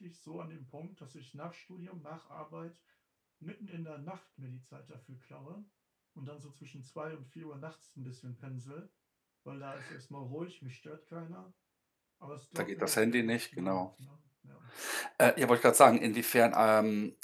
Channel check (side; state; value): both; identical; correlation 1.00